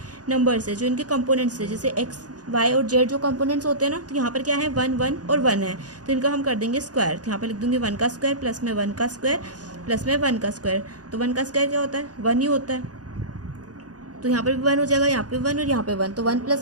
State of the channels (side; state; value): left; late; 0.68 ms